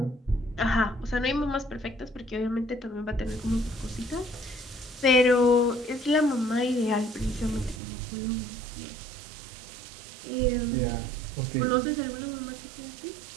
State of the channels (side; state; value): left; drops out; at 7.8 s